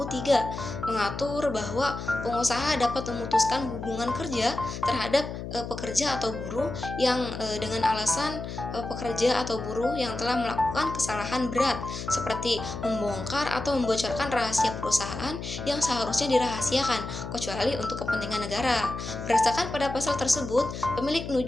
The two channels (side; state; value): left; noise; hum, 8 dB below the sound